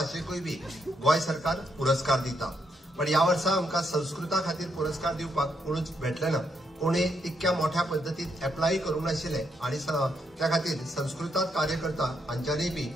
बी गोंय सरकार पुरस्कार दिता. पण या वर्सा आमकां संस्कृता खातीर पुरस्कार दिवपाक कोणूच भेटले ना. कोणी तितक्या मोठ्या पद्दतीन एप्लाय करूंक नाशिल्ले आनी त्या खातीर संस्कृतात कार्य करता हांच्यांनी बी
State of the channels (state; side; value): normal; both; correlation 0.78